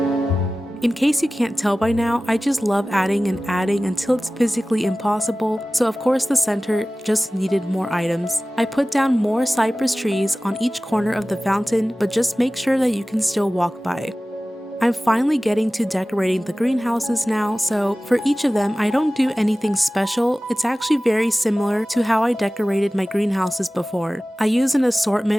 In case you can't tell by now, I just love adding and adding until it's physically impossible, so of course the center just needed more items. I put down more cypress trees on each corner of the fountain, but just make sure that you can still walk by. I'm finally getting to decorating the greenhouses now, so for each of them I don't do anything special. It's actually very similar to how I decorated my greenhouses before. I use an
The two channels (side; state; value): both; normal; correlation 0.97